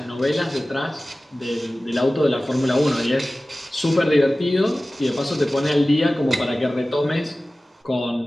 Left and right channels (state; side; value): normal; both; correlation 0.97